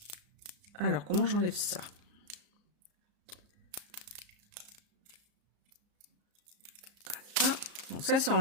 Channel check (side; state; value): left; late; 34 ms